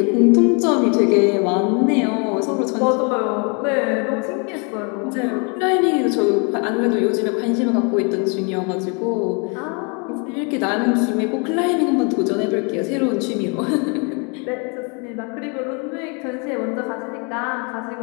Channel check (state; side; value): quieter; right; 34.3 dB